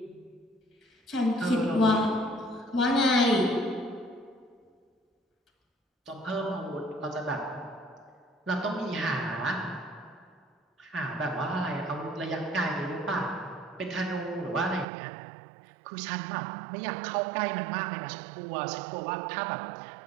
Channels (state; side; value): drops out; left; at 14.9 s